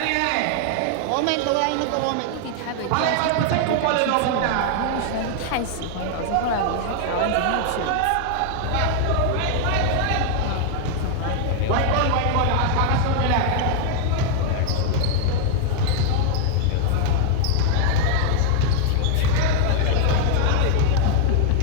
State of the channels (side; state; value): both; different; correlation 0.00